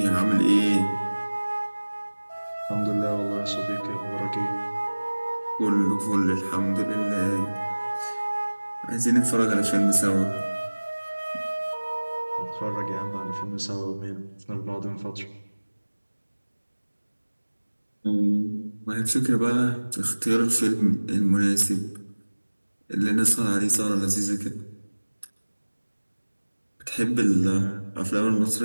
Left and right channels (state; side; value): inverted; both; correlation -1.00